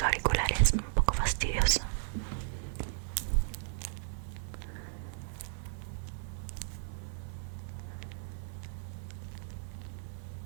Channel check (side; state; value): left; silent; digital silence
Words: auriculares, un poco fastidioso.